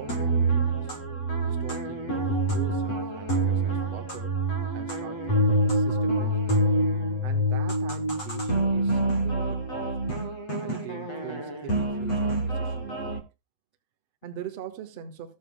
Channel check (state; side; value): late; right; 8.0 ms